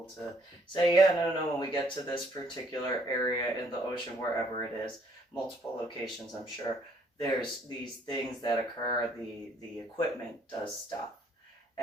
to say, yeah, no, when we get to this particular area in the ocean, wherever it is, multiple locations, I'm sure, there's these things that occur, the equipment does stuff.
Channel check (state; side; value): normal; both; correlation 0.65